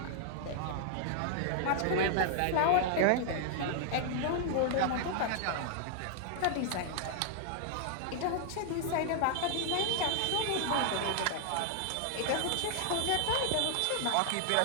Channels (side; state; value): both; different; correlation 0.00